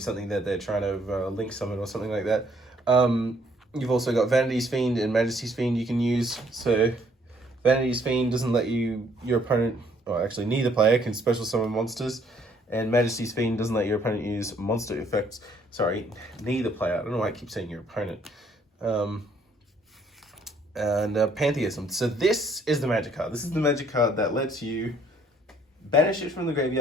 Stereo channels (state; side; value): normal; both; correlation 0.65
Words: that they're trying to link summon or something like that. You've also got Vanity's Fiend and Majesty's Fiend you can use. So Vanity's Fiend doesn't let your opponent, or actually neither player, can special summon monsters. And Majesty's Fiend doesn't let your opponent use monster effects. Sorry, neither player. I don't know why I keep saying your opponent. Pantheism. So this is the magic card. This is the magic card that lets you banish it from the